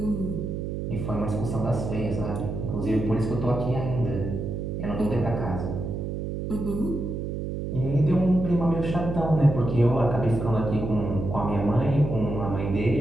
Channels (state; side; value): noise; right; hum, 4 dB below the sound